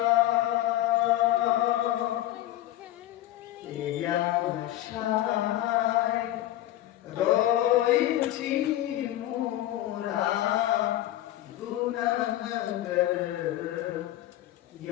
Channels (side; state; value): right; quieter; 14.2 dB